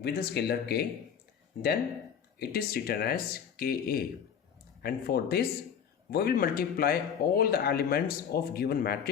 the scalar K, then it is written as Ka. And for this, we will multiply all the elements of given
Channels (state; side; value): quieter; right; 7.9 dB